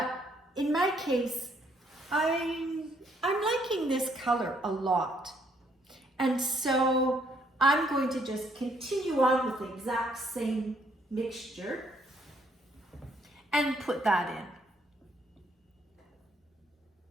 in my case, I'm liking this color a lot. And so I'm going to just continue on with the exact same mixture and put that in.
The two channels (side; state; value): both; normal; correlation 0.68